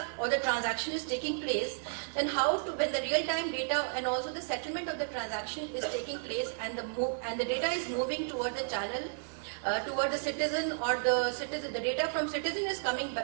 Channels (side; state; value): left; silent; digital silence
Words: or the transaction is taking place, then when the real-time data and also the settlement of the transaction is taking place, and the data is moving toward the channel, toward the citizen, or the data from citizen is coming